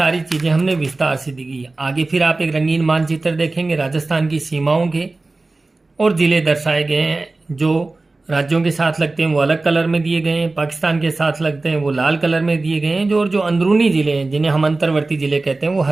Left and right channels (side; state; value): left; quieter; 3.3 dB